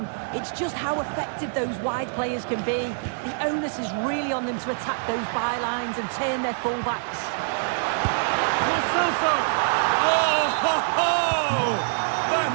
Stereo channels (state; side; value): silent; left; digital silence